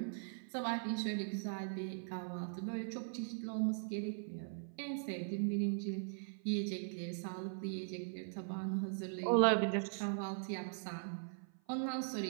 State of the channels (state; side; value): silent; left; 51 dB below the other